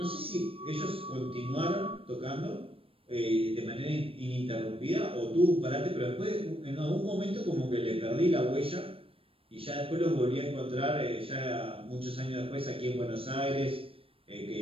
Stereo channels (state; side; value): late; left; 0.27 ms